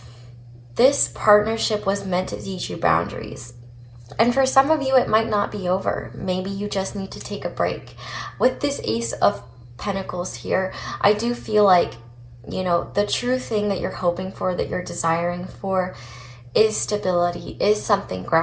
this partnership was meant to teach you boundaries. And for some of you, it might not be over. Maybe you just need to take a break. With this Ace of Pentacles here, I do feel the true thing that you're hoping for, that you're desiring for, is stability, is something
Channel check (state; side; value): identical; both; correlation 1.00